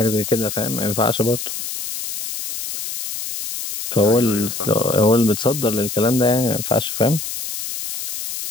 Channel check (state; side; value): noise; left; hiss, 6 dB below the sound